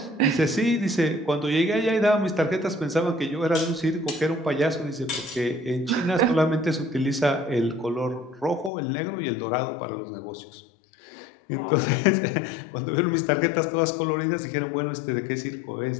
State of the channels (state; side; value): drops out; right; at 8.7 s